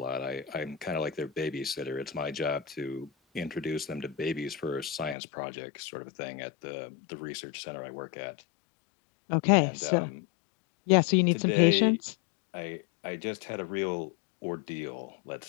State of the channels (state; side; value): drops out; right; at 5.2 s